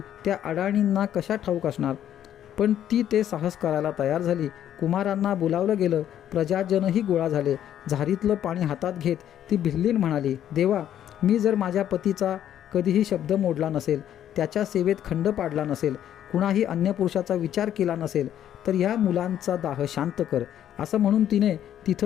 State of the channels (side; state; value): right; quieter; 10.7 dB